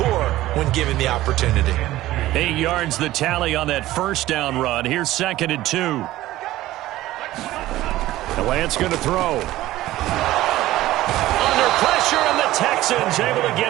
when given the opportunity. 8 yards the tally on that first down run. Here's 2nd and 2. The Lance going to throw. Under pressure, and the Texans able to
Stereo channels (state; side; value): quieter; left; 15.8 dB